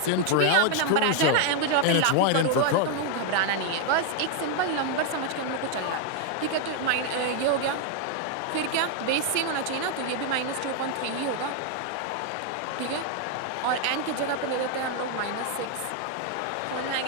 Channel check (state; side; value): different; both; correlation 0.01